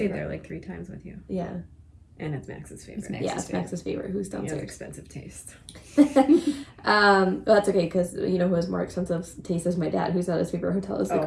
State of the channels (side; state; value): both; identical; correlation 1.00